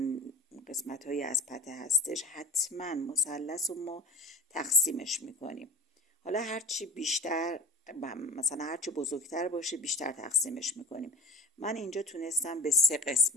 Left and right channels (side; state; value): both; normal; correlation 0.34